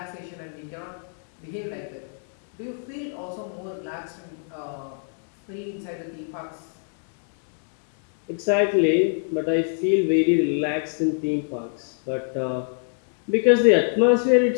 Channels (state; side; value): silent; right; digital silence